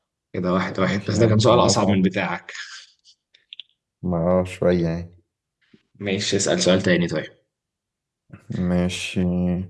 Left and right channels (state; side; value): identical; both; correlation 1.00